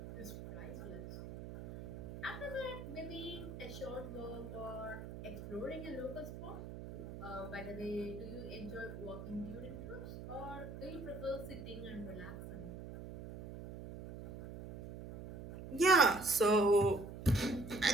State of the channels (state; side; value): noise; right; hum, 10 dB below the sound